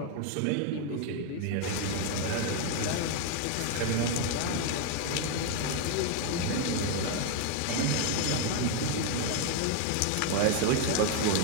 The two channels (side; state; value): both; different; correlation 0.01